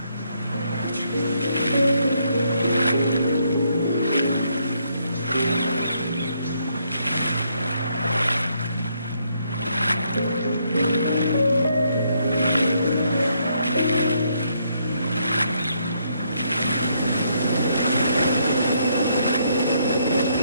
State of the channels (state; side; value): inverted; both; correlation -0.73